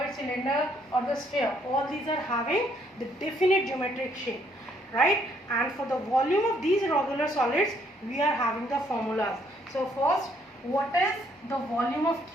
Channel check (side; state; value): both; normal; correlation 0.68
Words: cylinder or the sphere, all these are having the definite geometric shape, right? And for the volume of these regular solids we are having the formulas. So first, what is the volume of